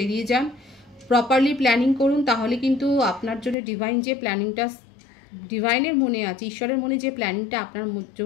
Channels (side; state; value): right; drops out; at 3.6 s